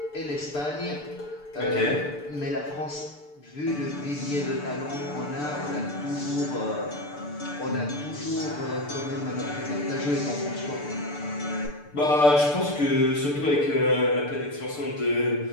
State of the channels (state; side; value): late; right; 6.8 ms